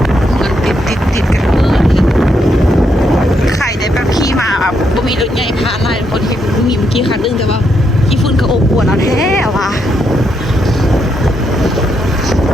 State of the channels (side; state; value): both; normal; correlation 0.78